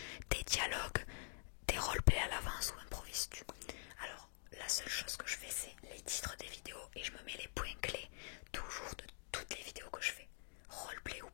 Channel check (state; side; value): silent; right; digital silence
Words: des dialogues, des roleplays à l'avance ou improvises-tu? Alors, la seule chose que je fais, c'est les titres des vidéos et je me mets les points clés toujours de toutes les vidéos que je fais, roleplay ou